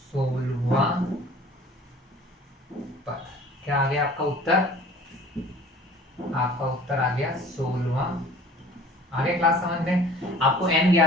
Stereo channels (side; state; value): both; normal; correlation 0.47